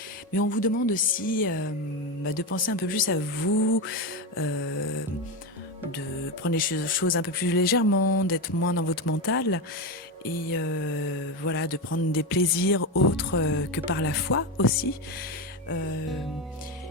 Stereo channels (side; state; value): both; normal; correlation 0.14